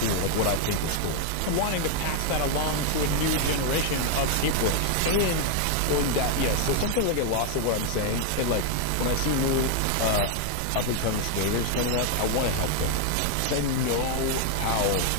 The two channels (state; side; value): different; both; correlation 0.00